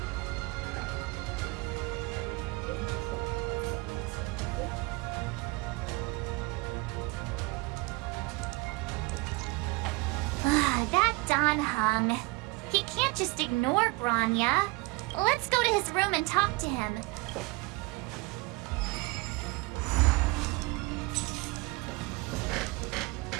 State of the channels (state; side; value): quieter; left; 24.2 dB